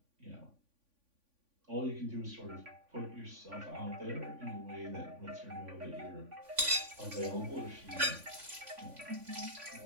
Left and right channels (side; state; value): left; late; 3.5 ms